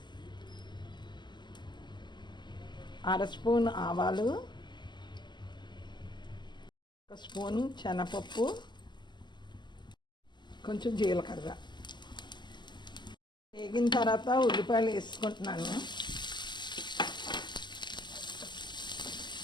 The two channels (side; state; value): right; late; 0.22 ms